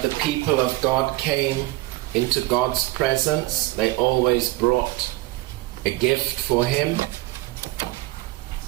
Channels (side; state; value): left; quieter; 19.8 dB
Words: the people of God came into God's presence, they always brought a gift for Him.